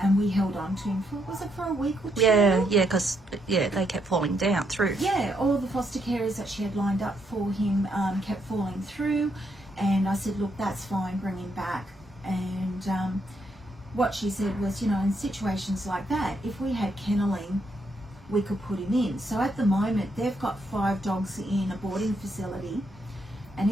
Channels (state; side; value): normal; both; correlation 0.77